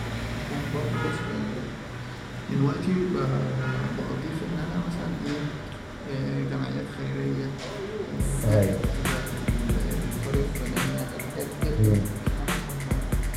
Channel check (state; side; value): identical; both; correlation 1.00